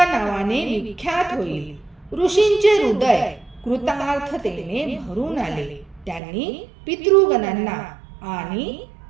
नावाने विख्यात होईल. ऋषींचे हृदय कृतार्थतेने भरून आले. त्यांनी पितृगणांना आणि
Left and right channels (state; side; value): drops out; left; at 6.2 s